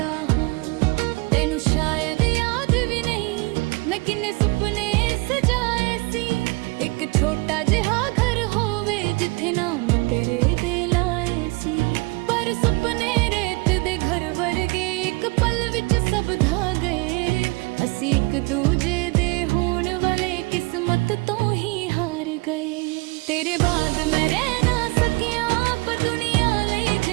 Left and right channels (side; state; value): left; quieter; 26.3 dB